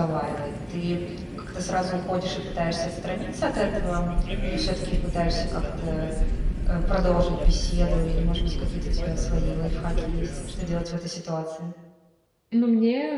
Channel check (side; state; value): both; identical; correlation 1.00